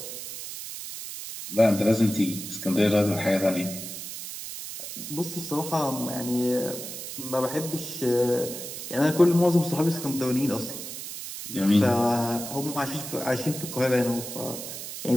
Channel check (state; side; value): noise; right; hiss, 9 dB below the sound